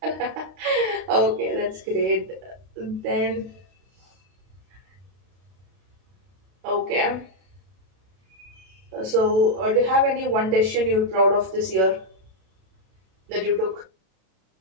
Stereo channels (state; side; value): late; left; 32 ms